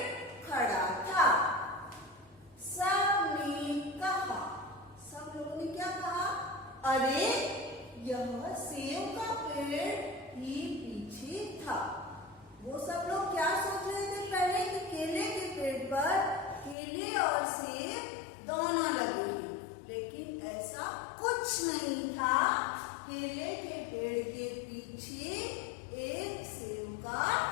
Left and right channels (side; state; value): right; drops out; at 16.8 s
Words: खड़ा था। सबने कहा, सब लोगों ने क्या कहा, अरे यह सेब का पेड़ ही पीछे था। वो सब लोग क्या सोच रहे थे पहले कि केले के पेड़ पर केले और सेब दोनों लगे हैं, लेकिन ऐसा कुछ नहीं था। केले के पेड़ के पीछे एक सेब का